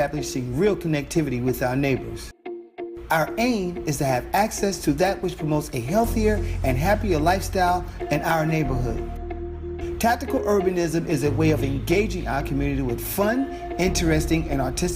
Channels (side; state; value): both; identical; correlation 1.00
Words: real connectivity with our neighbors. Our aim is to have access to that which promotes a healthier and happier lifestyle in our neighborhood. Tactical urbanism is a way of engaging our community with fun, interesting, and